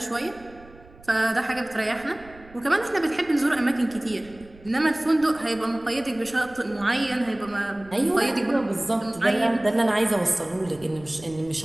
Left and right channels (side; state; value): right; noise; rumble, 22 dB below the sound